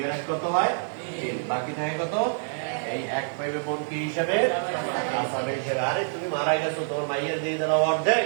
এর 1 কত হয়? 3। বাকি থাকে কত? এই 1 পাইবে বোন কি হিসাবে? আসাবে হিসাবে। আরে তুমি মারা গেছো, তোমার মাইয়ের দিয়ে দিলাম অর্ধেক,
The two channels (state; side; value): silent; left; digital silence